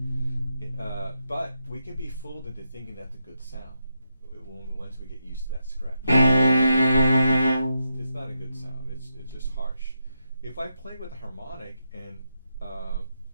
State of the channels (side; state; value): both; inverted; correlation -0.85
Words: But we can be fooled into thinking that's a good sound once we get used to that scratch. It's not a good sound. It's just harsh. If I play with a harmonic and